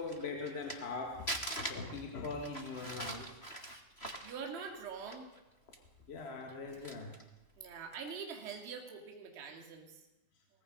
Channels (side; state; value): right; late; 3.0 ms